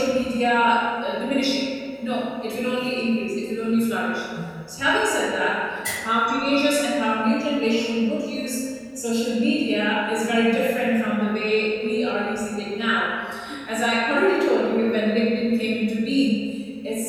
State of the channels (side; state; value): both; identical; correlation 1.00